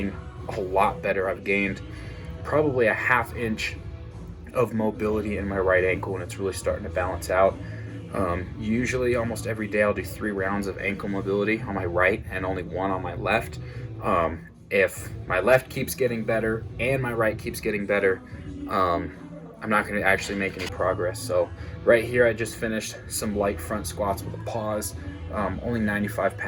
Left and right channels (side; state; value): both; identical; correlation 1.00